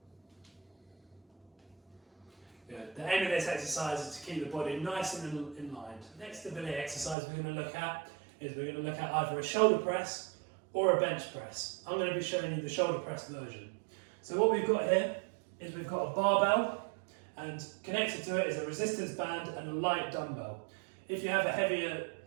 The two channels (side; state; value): left; drops out; at 7.2 s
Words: Good. The aim of this exercise is to keep the body nice and in line. The next stability exercise we're going to look at is we're going to look at either a shoulder press or a bench press. I'm going to be showing you the shoulder press version. So what we've got here is we've got a barbell, and connected to it is a resistance band and a light dumbbell. If you have a heavier